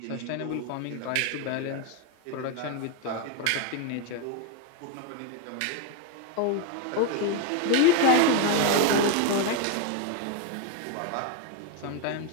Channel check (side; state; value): both; different; correlation 0.02